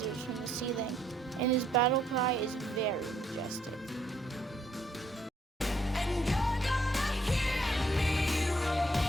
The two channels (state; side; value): normal; both; correlation 0.69